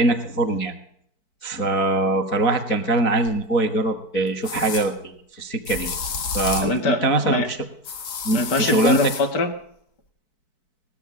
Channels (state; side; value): late; right; 4.6 ms